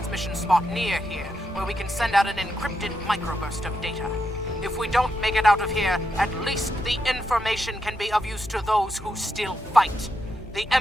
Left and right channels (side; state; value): both; normal; correlation 0.83